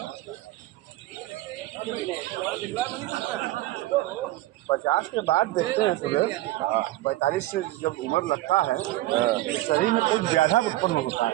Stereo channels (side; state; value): left; quieter; 17.3 dB